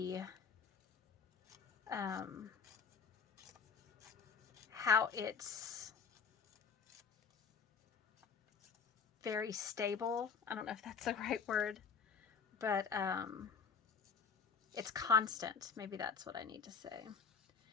how it's very stable. I don't know if that's the right word, but it's constant. Maybe that's what I need to say.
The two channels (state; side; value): quieter; right; 5.9 dB